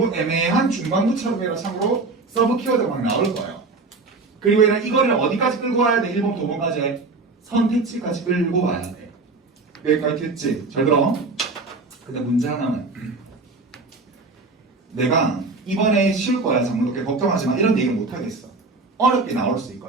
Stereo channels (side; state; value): left; quieter; 3.7 dB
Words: 애매한 중간부처럼 해라 참고로 서브 키워드가 막 나올 거예요. 그리고 얘는 이거를 어디까지 끌고 와야 돼? 1번부터 5번까지 선택지까지 끌고 와야 돼. 여기까지 됐지? 잘 들어. 근데 문제 하나는 내가 이번에 쉬울 거야 장문독해 걱정하지 마 이런 얘기는 못 하겠어. 어렵게 나올 수